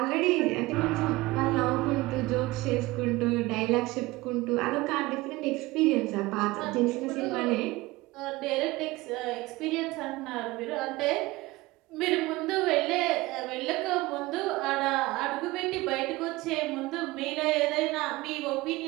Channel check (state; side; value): quieter; left; 20.3 dB